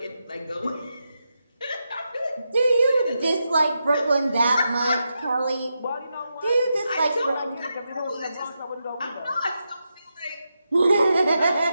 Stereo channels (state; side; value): inverted; both; correlation -0.86